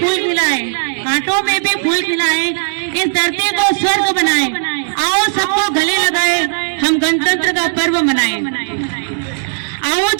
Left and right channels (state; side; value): silent; left; digital silence